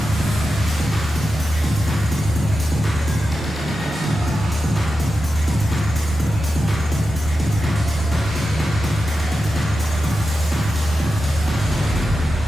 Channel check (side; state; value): both; normal; correlation 0.91